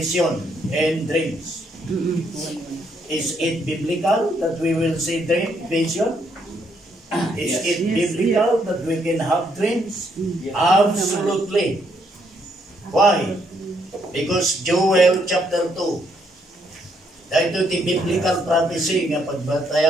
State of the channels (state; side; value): normal; both; correlation 0.73